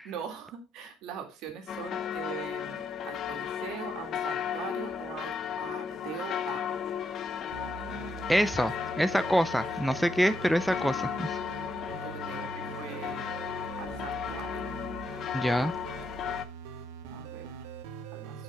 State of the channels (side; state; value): both; normal; correlation 0.78